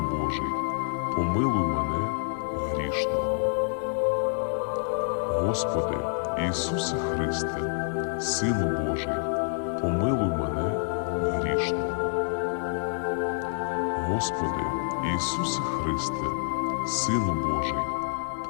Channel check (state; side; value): silent; right; digital silence